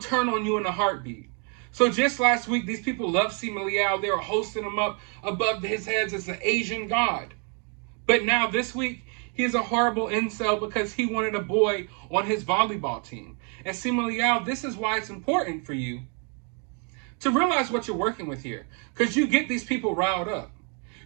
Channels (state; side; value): quieter; left; 38.2 dB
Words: on you in a heartbeat. So just last week, these people loved Simu Liu. They were hosting him up above his heads as the Asian god. But now this week, he's a horrible incel because he wanted a boy on his volleyball team. And Simu Liu, this is why it's important for you to realize what you're working with here, because you get these people riled up.